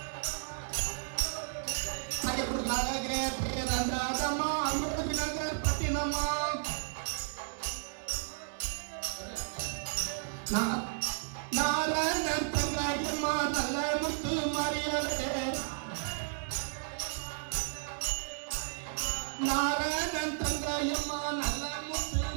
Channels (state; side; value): silent; left; 55 dB below the other